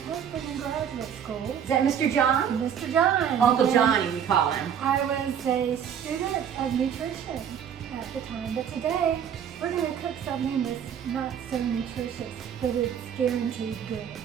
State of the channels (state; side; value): quieter; left; 8.5 dB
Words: in graduate school. Is that Mr. John? Mr. John. Uncle And Johnny, we call him. I was a student of nutrition at the time, but today we're going to cook something that's not so nutritious, but it's guaranteed good.